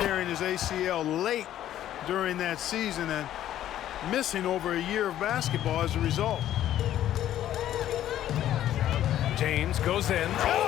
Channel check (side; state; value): right; quieter; 12.1 dB